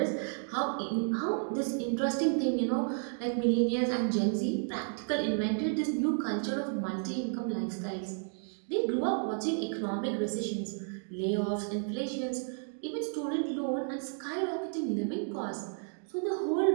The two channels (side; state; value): left; silent; 56 dB below the other